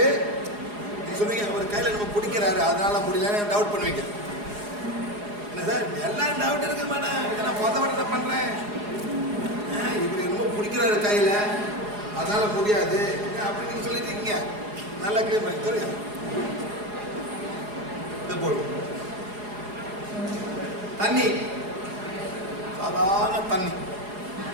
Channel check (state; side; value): late; left; 4.8 ms